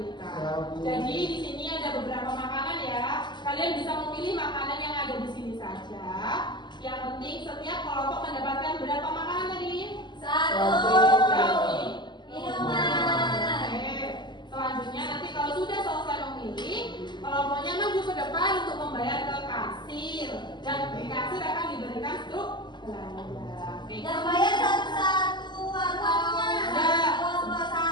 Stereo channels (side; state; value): right; late; 0.21 ms